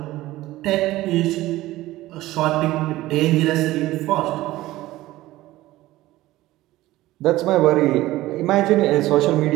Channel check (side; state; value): left; quieter; 16.9 dB